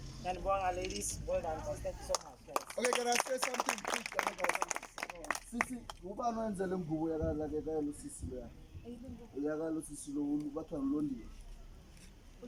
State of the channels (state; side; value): identical; both; correlation 1.00